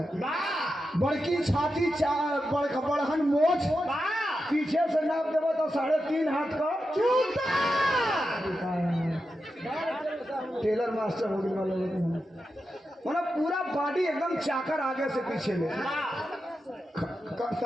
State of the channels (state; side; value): normal; both; correlation 0.89